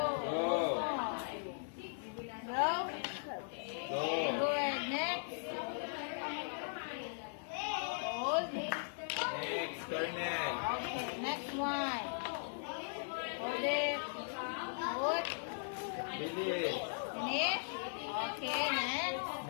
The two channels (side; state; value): right; silent; 52 dB below the other